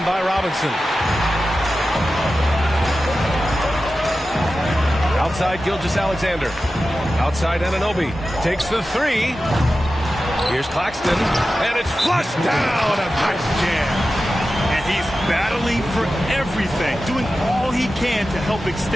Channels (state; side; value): normal; both; correlation 0.93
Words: by Robinson. Outside Gilgeous-Alexander. Outside Anunoby. Takes the 3. Here's Claxton. And it's flushed down. A nice jam. And he's battling for everything, doing all he can to help